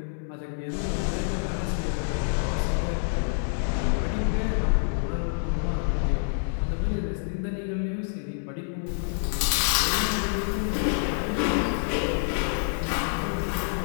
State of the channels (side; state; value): right; silent; digital silence